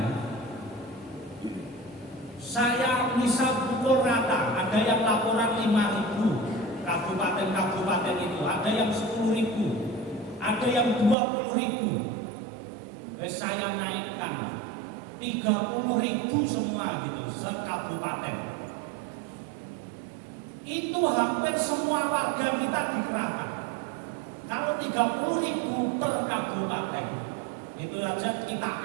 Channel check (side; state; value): left; drops out; at 11.2 s